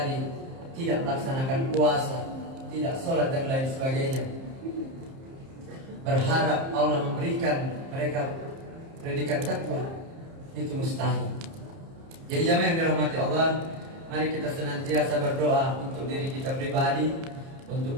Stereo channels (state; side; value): late; left; 30 ms